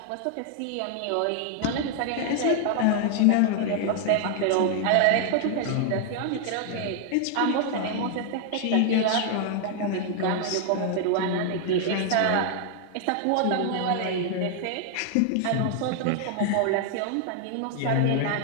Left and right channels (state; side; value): different; both; correlation 0.00